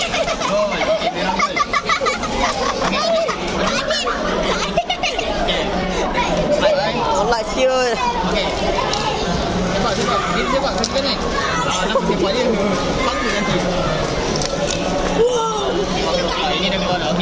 Gol. Okay, memang gol. nak sepak dia. Sama nanti. Ini dah keluar dah.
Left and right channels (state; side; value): identical; both; correlation 1.00